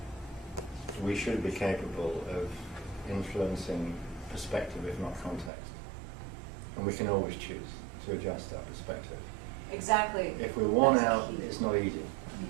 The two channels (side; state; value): left; drops out; at 5.5 s